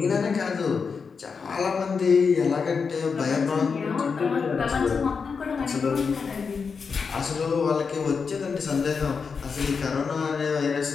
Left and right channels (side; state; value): right; quieter; 5.5 dB